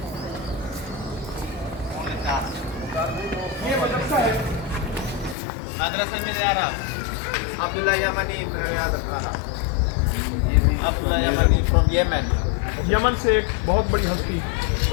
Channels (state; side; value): drops out; right; at 5.4 s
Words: ये मदरसा है मदरसा में अब्दुल्ला यमनी अब्दुल्ला यमनी फ्रॉम यमन। यमन से एक बहुत बड़ी हस्ती,